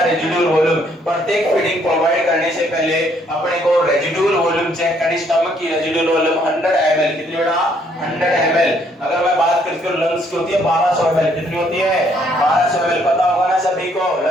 residual volume. प्रत्येक फीडिंग प्रोवाइड करने से पहले अपने को रेजिडुअल वॉल्यूम चेक करनी। स्टमक की रेजिडुअल वॉल्यूम 100 ml। कितनी बेटा? 100 ml। अगर मैं बात करती हूं लंग्स की होती है 1200 ml। कितनी होती है? 1200 ml। पता होगा ना सभी को,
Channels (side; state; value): both; normal; correlation 0.67